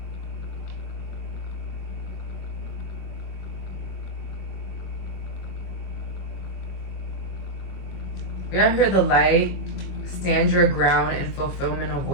We have here the light, stand your ground, and fulfillment of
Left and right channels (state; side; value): late; right; 22 ms